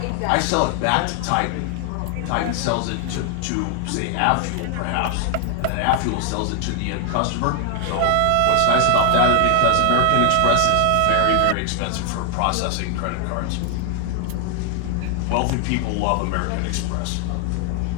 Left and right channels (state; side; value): different; both; correlation 0.00